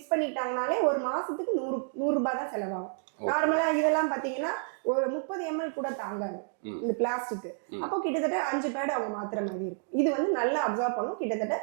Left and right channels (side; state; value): left; silent; digital silence